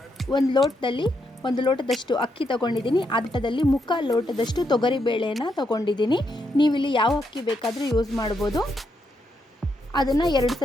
ಒಂದು ಲೋಟದಷ್ಟು ಅಕ್ಕಿ ತಗೊಂಡಿದ್ದೀನಿ. ಅದರಲ್ಲಿ ಮುಕ್ಕಾಲು ಲೋಟದಷ್ಟು ತೊಗರಿಬೇಳೆಯನ್ನು ತಗೊಂಡಿದ್ದೀನಿ. ನೀವಿಲ್ಲಿ ಯಾವ ಅಕ್ಕಿ ಬೇಕಾದರೂ ಯೂಸ್ ಮಾಡ್ಬೋದು. ಅದನ್ನು 2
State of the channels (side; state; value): both; normal; correlation 0.79